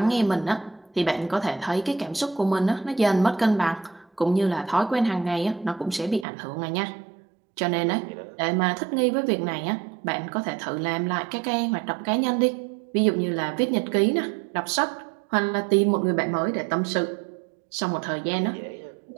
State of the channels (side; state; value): left; drops out; at 6.2 s